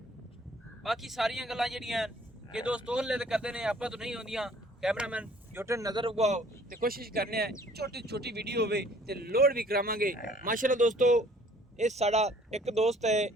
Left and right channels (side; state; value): both; normal; correlation 0.56